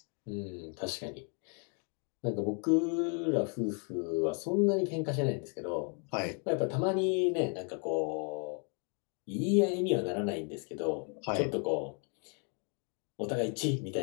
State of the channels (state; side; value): quieter; right; 39.3 dB